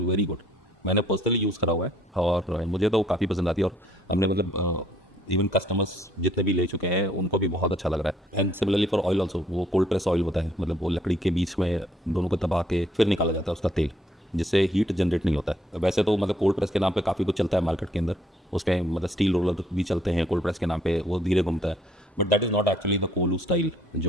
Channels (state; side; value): normal; both; correlation 0.65